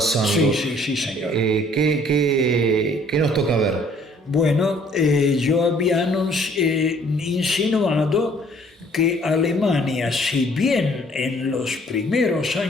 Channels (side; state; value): both; normal; correlation 0.59